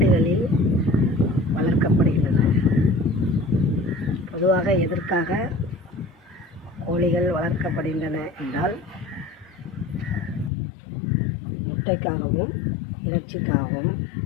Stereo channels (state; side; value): drops out; right; at 10.5 s